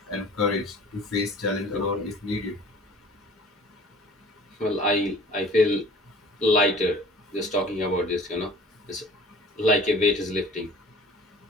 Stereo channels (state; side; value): normal; both; correlation 0.46